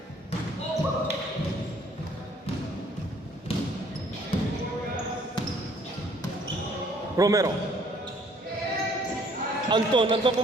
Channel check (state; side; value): normal; both; correlation 0.60